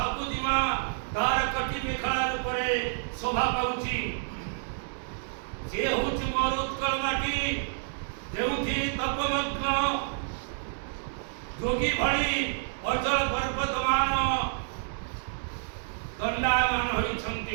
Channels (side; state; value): left; silent; digital silence